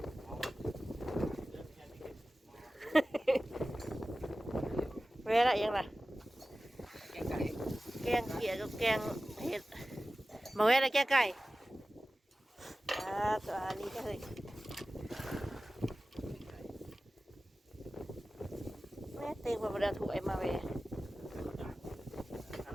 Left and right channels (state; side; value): normal; both; correlation 0.96